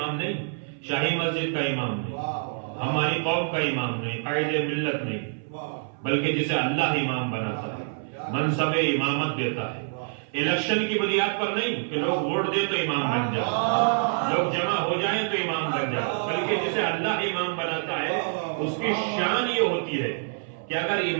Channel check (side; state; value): left; silent; 61 dB below the other